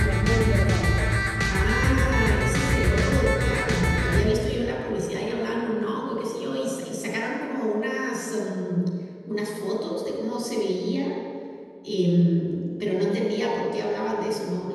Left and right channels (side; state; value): both; identical; correlation 1.00